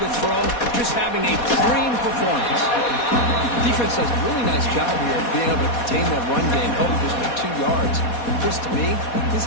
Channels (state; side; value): late; right; 4.2 ms